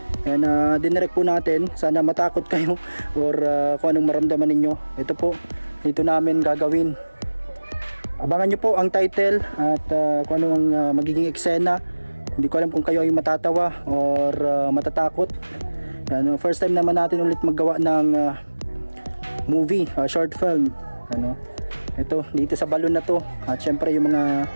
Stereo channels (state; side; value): inverted; both; correlation -1.00